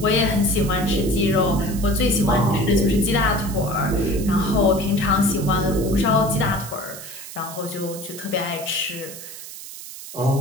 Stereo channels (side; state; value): right; noise; hiss, 13 dB below the sound